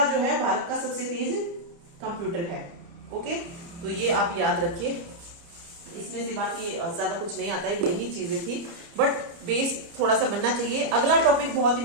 जो है भारत का सबसे तेज कंप्यूटर है। ओके, तो ये आप याद रखिए। इसमें से बाकी ज्यादा कुछ नहीं आता है, यही चीजें थी, बट बेस थोड़ा सा बनना चाहिए। अगला टॉपिक बहुत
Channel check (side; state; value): left; late; 30 ms